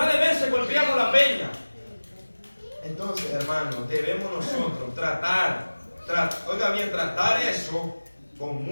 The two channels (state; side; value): inverted; both; correlation -1.00